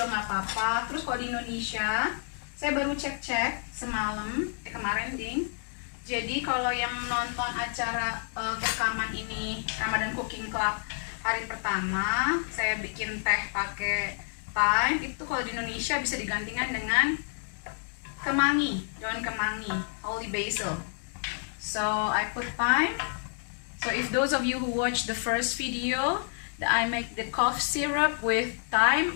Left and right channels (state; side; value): silent; right; 58 dB below the other